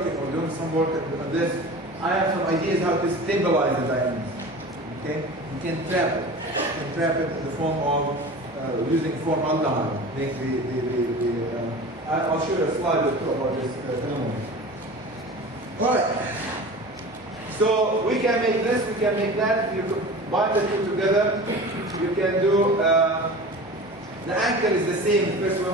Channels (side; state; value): both; normal; correlation 0.36